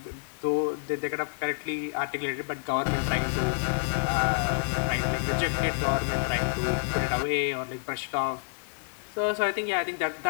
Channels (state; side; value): silent; right; digital silence